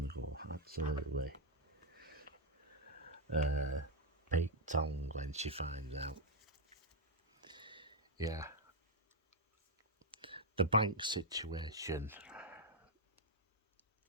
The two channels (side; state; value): both; normal; correlation 0.01